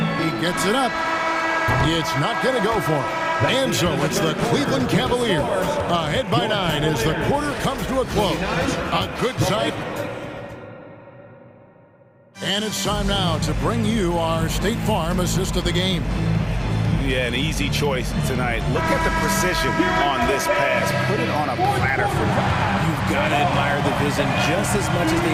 He gets it up. It's not going to go for him. And so it's the Cleveland Cavaliers ahead by 9 as the quarter comes to a close. A good sight. And it's time now to bring you our State Farm assist of the game. Yeah, an easy choice tonight. Look at the precision on this pass. Put it on a platter for him. You've got to admire the vision just as much as the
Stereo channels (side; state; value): both; identical; correlation 1.00